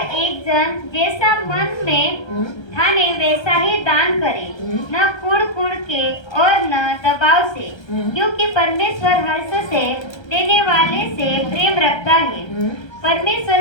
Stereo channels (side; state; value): right; late; 1.3 ms